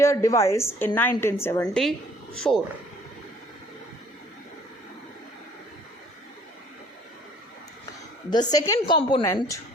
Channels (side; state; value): both; normal; correlation 0.57